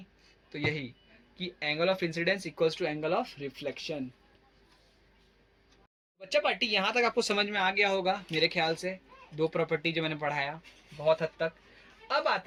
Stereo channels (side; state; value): both; identical; correlation 1.00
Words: तो यही कि angle of incidence equals to angle of reflection. बच्चा पार्टी यहाँ तक आपको समझ में आ गया होगा मेरे ख्याल से, 2 प्रॉपर्टी जो मैंने पढ़ाया बहुत हद तक। अब